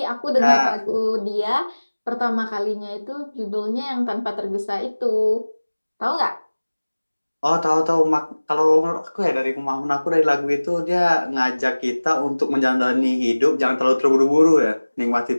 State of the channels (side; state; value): both; inverted; correlation -1.00